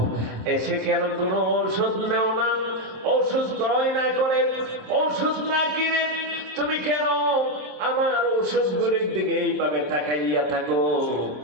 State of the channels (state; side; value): late; left; 27 ms